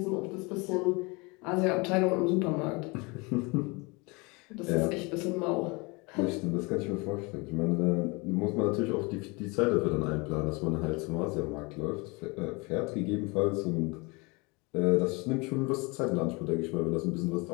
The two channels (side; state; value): right; quieter; 27.4 dB